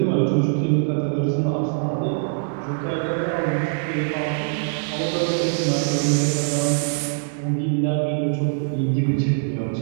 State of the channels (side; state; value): left; silent; 64 dB below the other